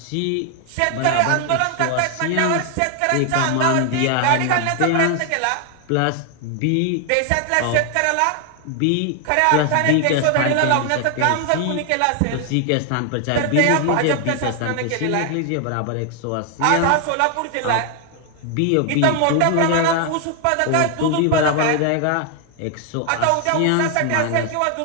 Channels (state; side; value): different; both; correlation 0.00